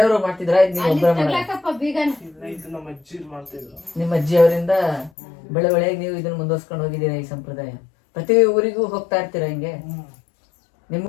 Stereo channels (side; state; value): right; drops out; at 5.1 s